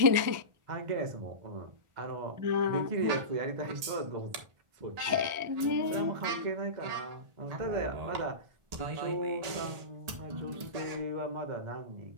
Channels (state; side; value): late; left; 1.4 ms